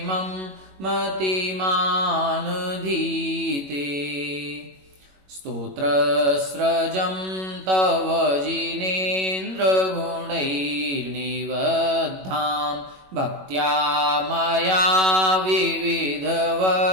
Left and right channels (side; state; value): left; late; 21 ms